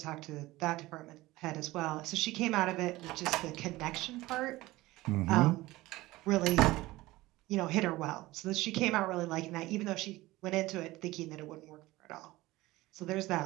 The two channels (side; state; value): left; quieter; 18.7 dB